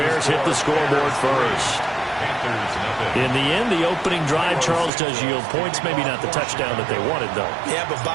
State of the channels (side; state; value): left; drops out; at 4.9 s